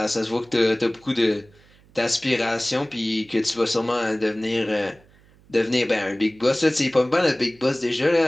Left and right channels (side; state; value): right; noise; hum, 29 dB below the sound